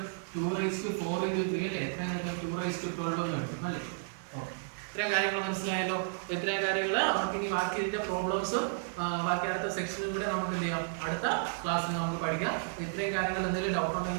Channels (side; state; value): left; silent; digital silence